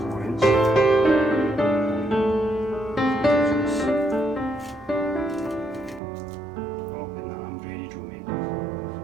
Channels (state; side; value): drops out; left; at 6.0 s